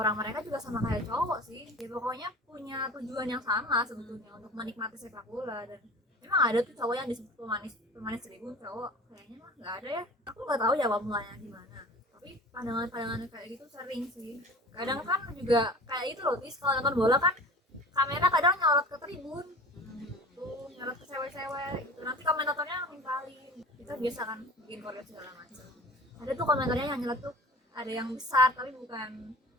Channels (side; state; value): both; normal; correlation 0.40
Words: mereka juga sama kayak cowok sih ya, pokoknya punya tujuan yang sama sebetulnya untuk menikmati sepak bola. Dan emang ada tuh cowok yang disebut pemanis tribun cowok, kayaknya mah nggak ada ya, aku nggak tahu ya awal mulanya gimana. Tapi pandangan kayak gitu sering sih. Kadang kan juga kayak itu loh Tis, kalau nonton bola kan kamera kadang nyorot ke tribun tuh, nyorot ke cewek-cewek gitu, nanti komentatornya nimpalin, kita biasa kan bikin koreografi segala macam. Ada tuh komentarnya yang nyorot tuh, ada yang besar tapi bukan